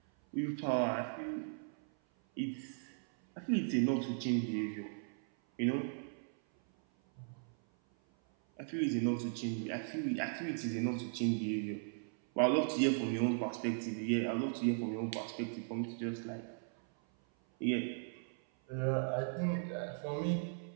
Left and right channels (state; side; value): silent; left; 53 dB below the other